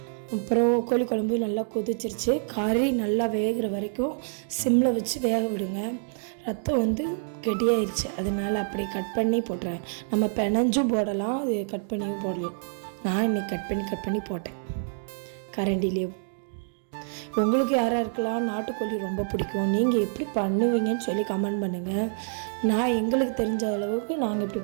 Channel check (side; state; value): left; silent; digital silence